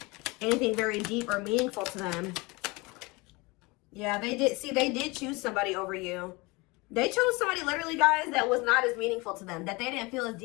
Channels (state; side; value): quieter; right; 25.0 dB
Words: anything very deep or meaningful to them. Yeah, they did choose somebody over you. They chose somebody, literally, guys, that was not as meaningful to them, that they didn't feel as